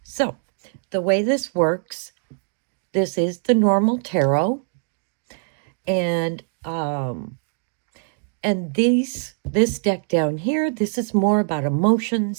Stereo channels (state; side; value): silent; left; 63 dB below the other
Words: so the way this works, this is the normal tarot, and this deck down here, this is more about